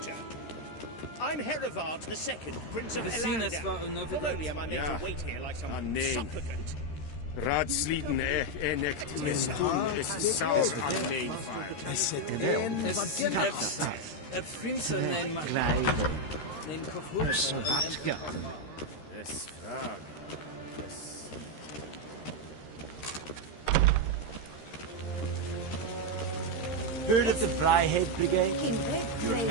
I'm Herivard II, Prince of Elanda. Not only am I made to wait here like some supplicant. Raadsliden echt misdoen is saus aan neemvaar. Prinsen neem maar. Neem Savatka. Es vraag. Heard of the Vryhead Brigade? Your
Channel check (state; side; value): late; right; 13 ms